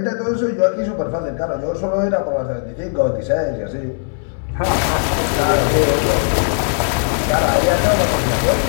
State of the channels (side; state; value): right; silent; digital silence